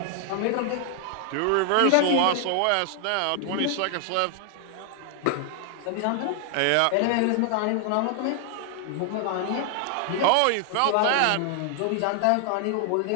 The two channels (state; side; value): different; both; correlation 0.00